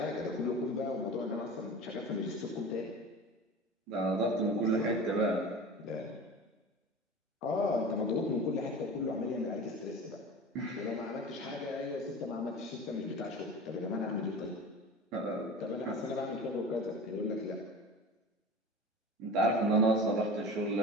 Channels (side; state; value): both; normal; correlation 0.34